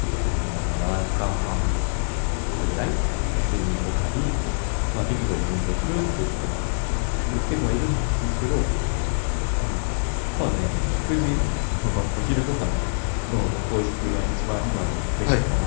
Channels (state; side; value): silent; right; 61 dB below the other